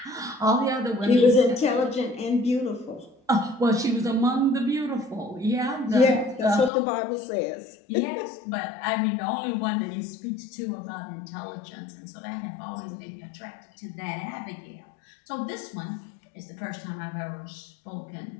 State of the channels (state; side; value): drops out; right; at 6.7 s